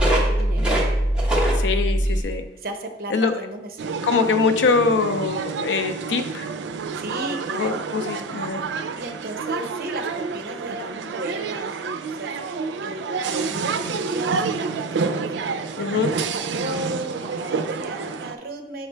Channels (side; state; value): both; normal; correlation 0.34